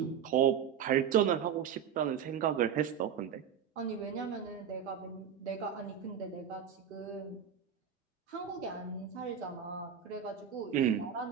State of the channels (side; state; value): left; quieter; 8.4 dB